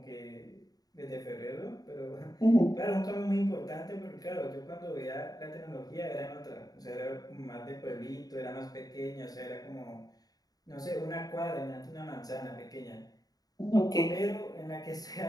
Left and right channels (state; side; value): late; right; 0.18 ms